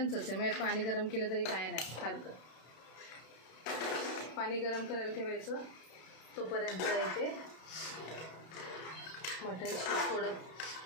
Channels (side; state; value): right; late; 32 ms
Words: आहे. मग पाणी गरम केलं तरी काय नाही सारखं. पाणी गरम करायला ठेवायचं. तोपर्यंत इथे मटण थोडं